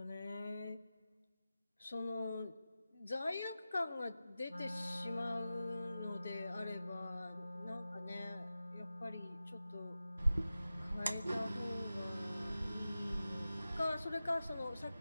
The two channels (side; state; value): both; inverted; correlation -0.94